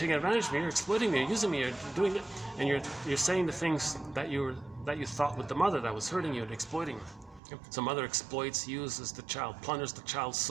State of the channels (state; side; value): drops out; left; at 7.4 s